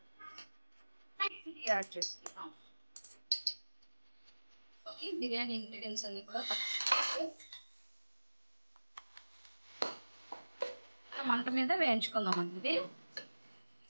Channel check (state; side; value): inverted; both; correlation -1.00